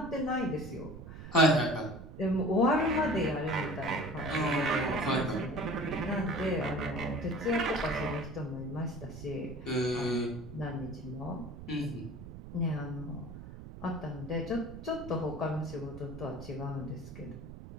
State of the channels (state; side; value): noise; right; rumble, 13 dB below the sound